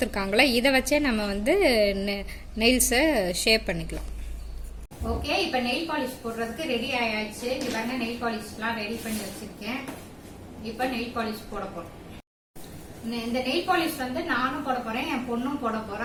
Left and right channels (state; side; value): identical; both; correlation 1.00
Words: இதை வச்சே நம்ம வந்து நெயில்ஸை ஷேப் பண்ணிக்கலாம். ஓகே, இப்போ நெயில் பாலிஷ் போடுறதுக்கு ரெடி ஆயாச்சு. இங்க பாருங்க நெயில் பாலிஷ்லாம் ரெடி பண்ணி வச்சிருக்கேன். இப்போ நெயில் பாலிஷ் போட போறோம். இந்த நெயில் பாலிஷ் வந்து நானும் போட போறேன், என் பொண்ணும் போட